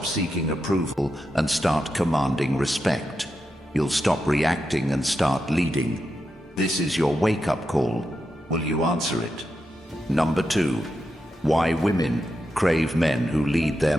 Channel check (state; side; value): normal; both; correlation 0.87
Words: seeking approval and start commanding respect. You'll stop reacting and start leading. This is your wake-up call. Will you answer it? Number 2, why women crave men who lead their